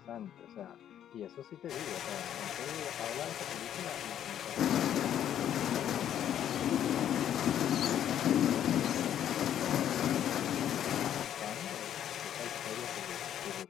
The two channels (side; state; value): right; quieter; 10.4 dB